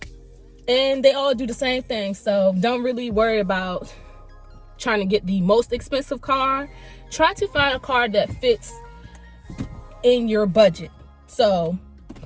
And they all do the same thing, so don't really worry about trying to get the most expensive car. Try to find a car that fits in your budget. So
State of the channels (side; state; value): both; identical; correlation 1.00